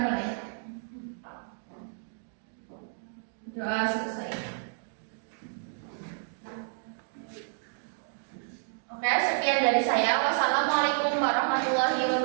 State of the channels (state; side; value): silent; left; digital silence